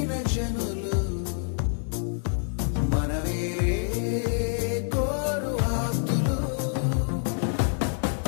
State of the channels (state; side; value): silent; right; 60 dB below the other